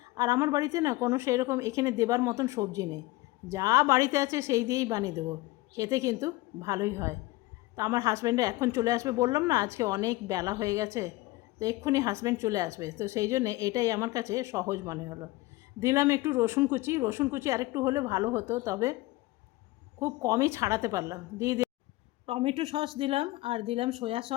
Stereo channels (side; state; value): right; quieter; 19.6 dB